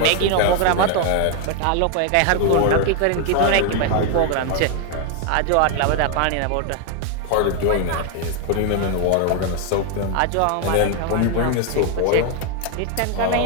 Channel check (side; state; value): both; different; correlation 0.01